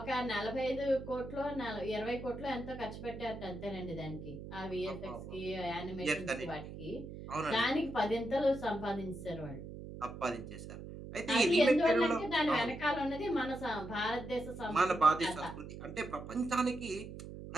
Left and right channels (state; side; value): noise; right; hum, 11 dB below the sound